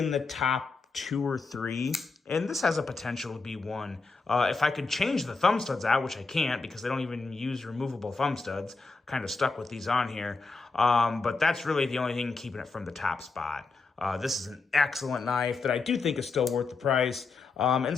the top 2 or 3, and this has a potential to be 1. If I could change the thumb studs out, which I can't because they don't even use removable thumb studs, kind of stuck with these on here, but that's really the only thing keeping it from the top spot. This is an excellent knife that I do think is still worth the price, and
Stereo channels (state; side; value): quieter; right; 4.1 dB